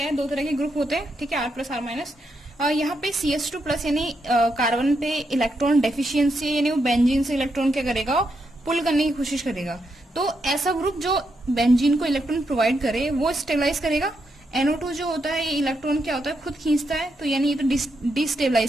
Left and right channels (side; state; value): both; normal; correlation 0.81